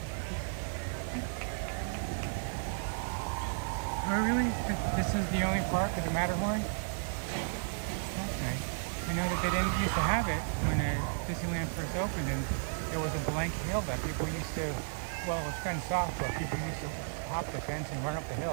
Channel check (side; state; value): left; silent; digital silence